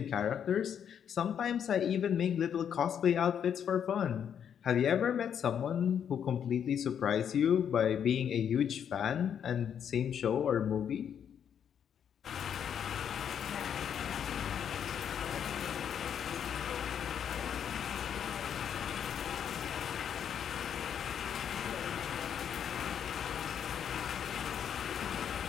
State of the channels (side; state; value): right; quieter; 8.5 dB